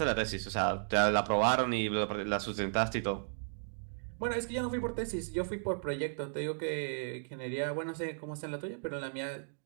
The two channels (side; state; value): left; silent; digital silence